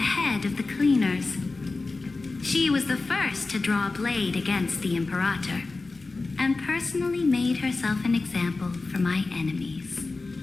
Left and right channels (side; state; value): right; quieter; 3.6 dB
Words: head of the cleaners. She was the first to draw a blade against the Imperator, and personally made herself an example for my enemies.